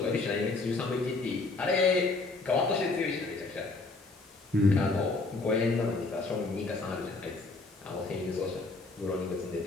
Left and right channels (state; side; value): quieter; right; 3.5 dB